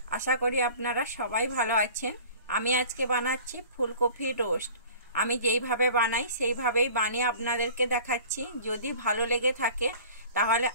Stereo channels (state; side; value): inverted; both; correlation -0.44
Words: আশা করি আপনারা সবাই ভালো আছেন। আমি আজকে বানাচ্ছি ফুলকপি রোস্ট। আমি যেইভাবে বানাই সেইভাবেই বানিয়ে আপনাদেরকে দেখাচ্ছি। যদি ভালো লেগে থাকে তাহলে